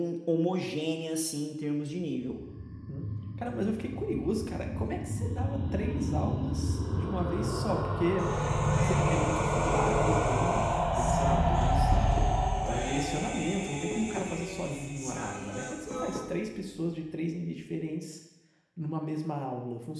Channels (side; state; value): both; identical; correlation 1.00